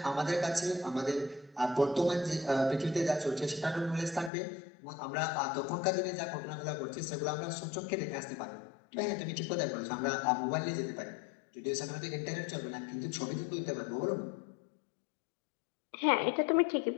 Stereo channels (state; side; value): drops out; right; at 4.3 s